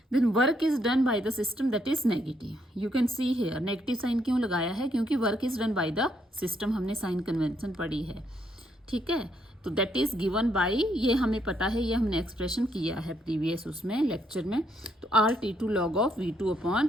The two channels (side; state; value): both; normal; correlation 0.73